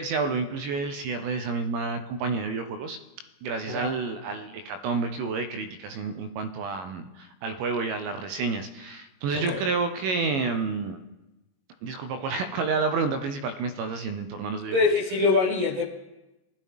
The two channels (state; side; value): late; left; 22 ms